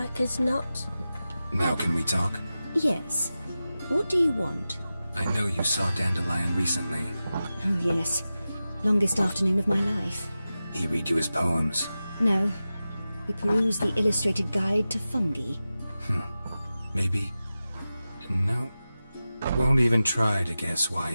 as not. Now can we talk? Yes. What do you want? I know you saw Dandelion recently. Oh, yes. Longest afternoon of my life. He read you his poems. No. We perused the illustrated guide to fungi. Maybe... No. Won't even try to guess why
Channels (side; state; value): both; inverted; correlation -0.94